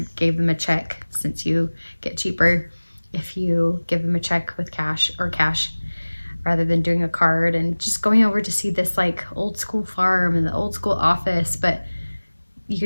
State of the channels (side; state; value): both; inverted; correlation -1.00